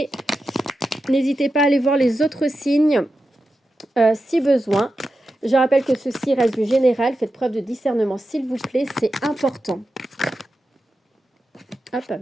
N'hésitez pas à aller voir les autres signes si besoin. Je rappelle que ceci reste du général, faites preuve de discernement s'il vous plaît, c'est important. Hop, elle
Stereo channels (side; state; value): both; normal; correlation 0.90